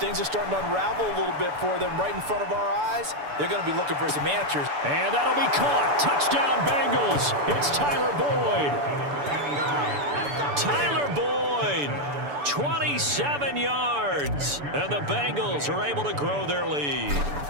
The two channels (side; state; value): left; late; 6.9 ms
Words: are starting to unravel a little bit for them right in front of our eyes. They're going to be looking for some answers. And that'll be caught. Touchdown, Bengals. It's Tyler Boyd. Tyler Boyd, 27 yards. And the Bengals are able to grow their lead.